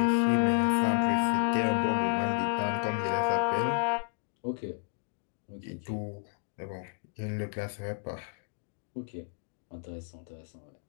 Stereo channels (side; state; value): right; silent; digital silence